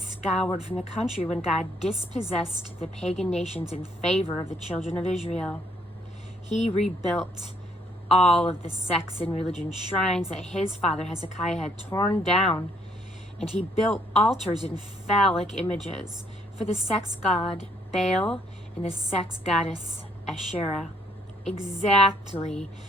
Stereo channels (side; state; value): both; normal; correlation 0.67